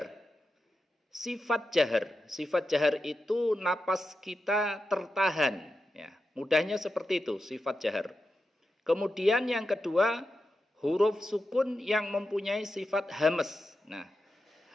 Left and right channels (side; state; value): both; normal; correlation 0.89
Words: Sifat jahar itu napas kita tertahan. Ya, mudahnya seperti itu, sifat jahar. Kemudian yang kedua, huruf sukun yang mempunyai sifat hamas. Nah,